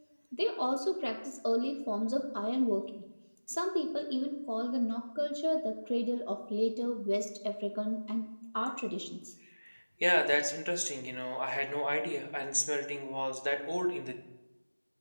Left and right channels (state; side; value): inverted; both; correlation -1.00